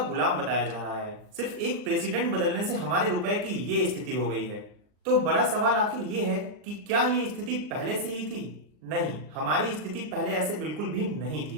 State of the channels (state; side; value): late; left; 39 ms